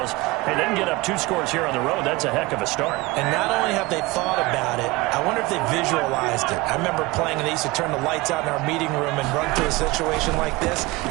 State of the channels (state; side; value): quieter; left; 21.1 dB